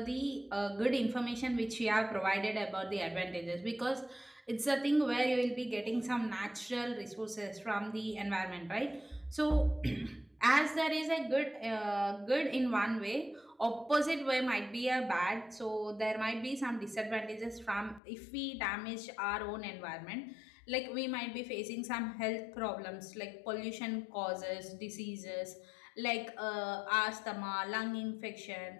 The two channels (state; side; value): drops out; right; at 18.0 s